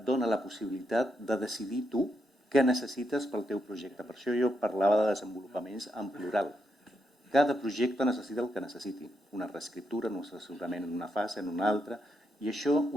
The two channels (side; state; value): both; normal; correlation 0.81